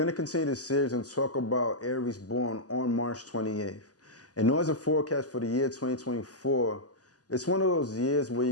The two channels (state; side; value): late; right; 0.67 ms